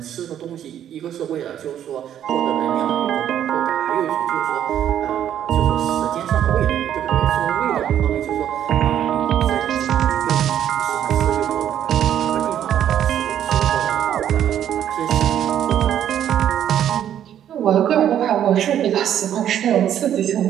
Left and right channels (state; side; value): quieter; left; 10.3 dB